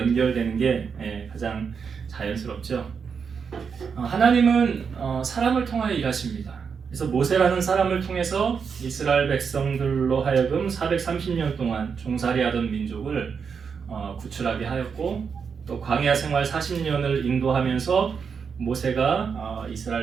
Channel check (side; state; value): left; quieter; 6.2 dB